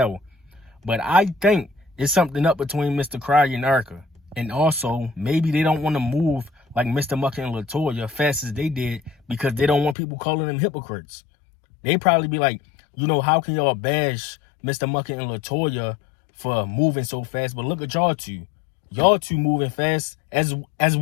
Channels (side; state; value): right; drops out; at 10.0 s